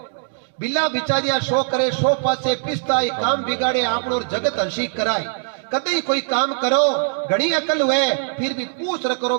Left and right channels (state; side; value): silent; left; digital silence